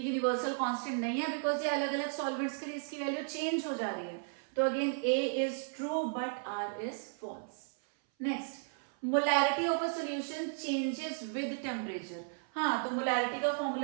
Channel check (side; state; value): left; silent; 55 dB below the other